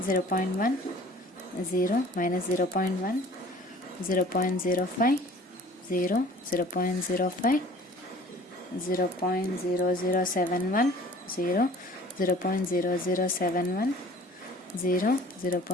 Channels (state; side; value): normal; both; correlation 0.48